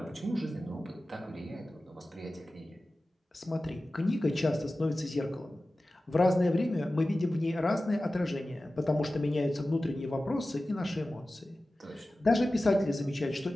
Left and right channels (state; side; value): normal; both; correlation 0.95